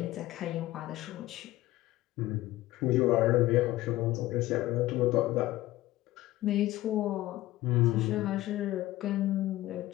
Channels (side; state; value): right; quieter; 16.5 dB